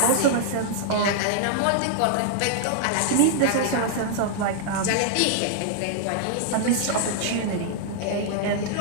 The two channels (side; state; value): both; different; correlation -0.01